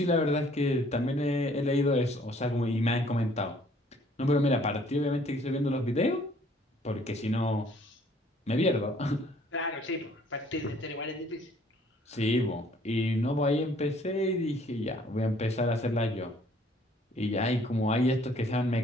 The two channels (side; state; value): both; normal; correlation 0.59